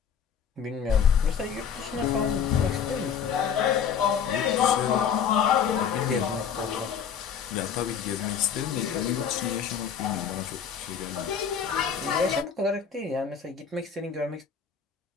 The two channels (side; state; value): right; quieter; 7.4 dB